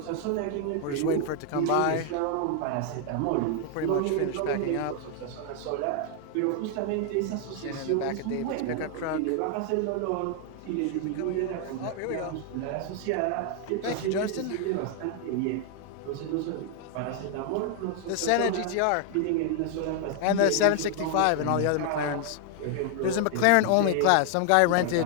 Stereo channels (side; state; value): both; different; correlation 0.00